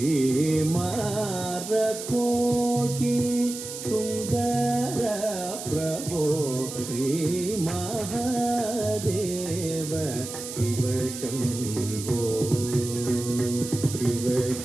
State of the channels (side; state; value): right; noise; hiss, 9 dB below the sound